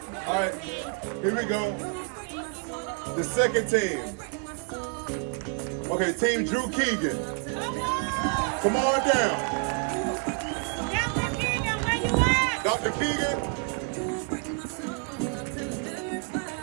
All right, here we go. The second team. Okay, Team Drew Keegan. Come on down. Dr. Keegan.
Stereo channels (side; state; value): left; quieter; 38.0 dB